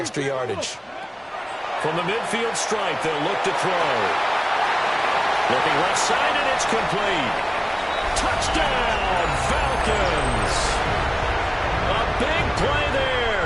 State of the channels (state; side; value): identical; both; correlation 1.00